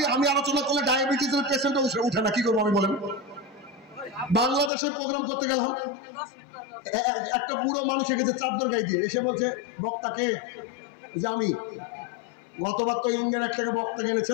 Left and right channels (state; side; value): drops out; right; at 4.7 s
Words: আমি আলোচনা করলে ডায়াবেটিসের পেশেন্টও উঠে না, কি করবো আমি বলেন? বাংলাদেশে প্রোগ্রাম করতে গেলাম, একটা বুড়ো মানুষ এসেছে চাদর গায়ে দিয়ে, এসে বলছে বক্তাকে যে আমি গতবার তো ইন্ডিয়ান এক থেকে বক্তা